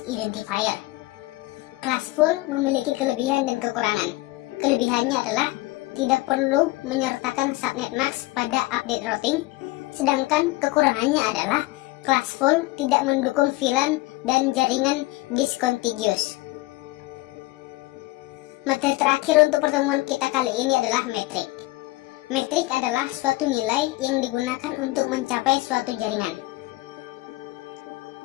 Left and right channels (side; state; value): right; quieter; 20.1 dB